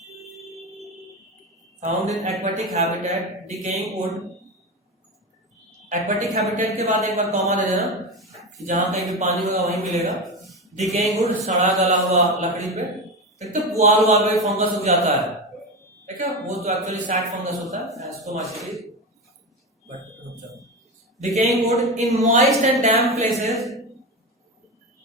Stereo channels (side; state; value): both; normal; correlation 0.19